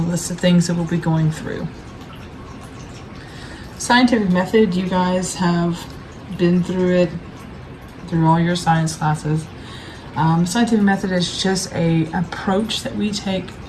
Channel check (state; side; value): identical; both; correlation 1.00